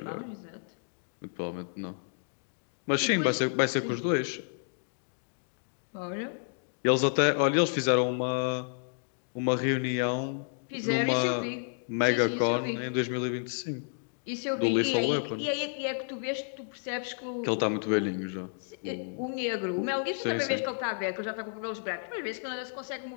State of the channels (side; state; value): right; silent; digital silence